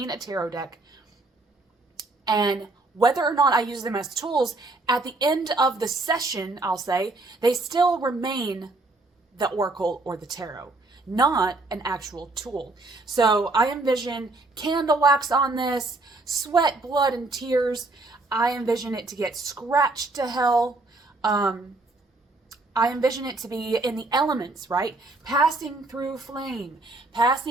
a tarot deck. And whether or not I use them as tools, at the end of the session, I'll say, they still remain the oracle or the tarot, not an actual tool. So I envision candle wax on this, sweat, blood, and tears. I envision it to get scratched to hell. I envision it to be in the elements, right? Passing through flame,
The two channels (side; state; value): left; quieter; 3.1 dB